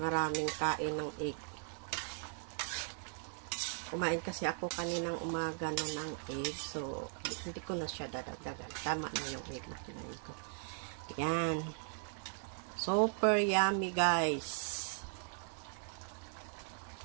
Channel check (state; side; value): silent; left; 52 dB below the other